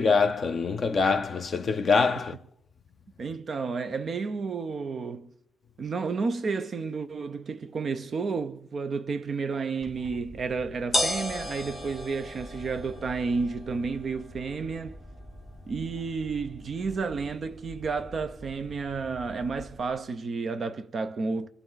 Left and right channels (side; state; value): both; normal; correlation 0.80